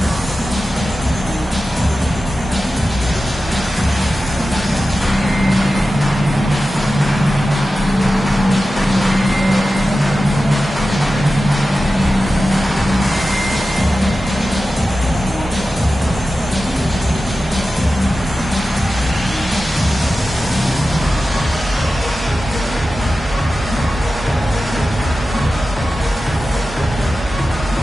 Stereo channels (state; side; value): normal; both; correlation 0.94